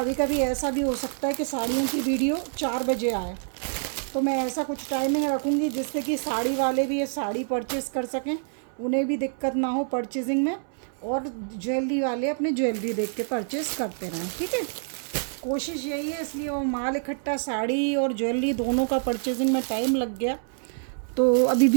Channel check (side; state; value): left; silent; 60 dB below the other